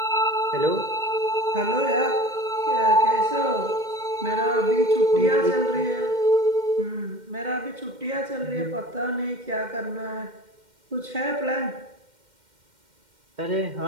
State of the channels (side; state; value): left; late; 2.1 ms